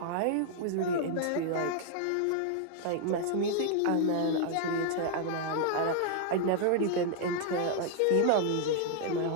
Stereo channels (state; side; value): different; both; correlation 0.00